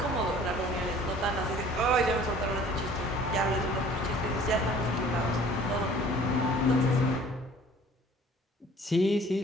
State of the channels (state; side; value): normal; both; correlation 0.51